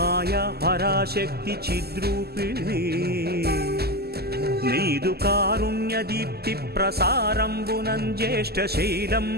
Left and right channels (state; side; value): late; left; 0.46 ms